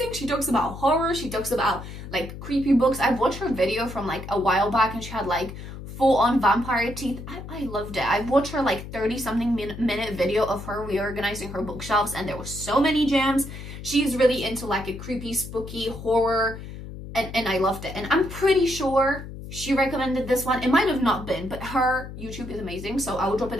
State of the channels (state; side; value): noise; left; hum, 11 dB below the sound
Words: She talks about horror. She talks about like creepy books. I've watched her video from like a while back and she had like full-on vampire teeth. I loved it. I've watched her like 30-something minute video of her reorganizing her bookshelves and there were so many gems. She's really into like a creepy, spooky horror and I loved it. And I'm pretty sure she recommended this one. It might have not been, but her YouTube is amazing, so I will drop it